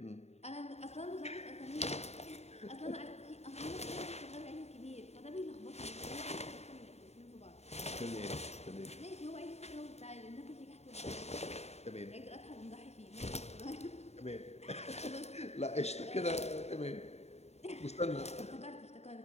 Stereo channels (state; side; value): late; right; 0.31 ms